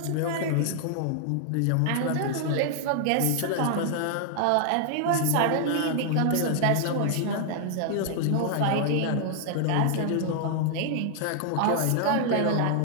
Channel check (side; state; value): both; different; correlation -0.01